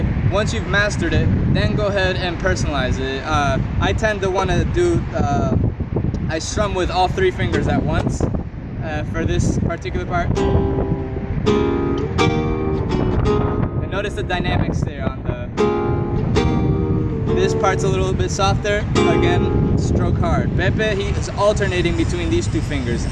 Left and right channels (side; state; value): both; identical; correlation 1.00